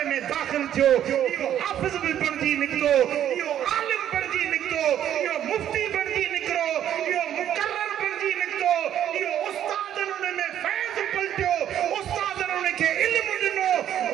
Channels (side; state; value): left; quieter; 10.6 dB